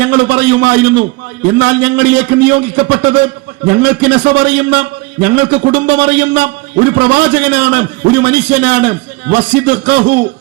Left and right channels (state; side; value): quieter; left; 24.3 dB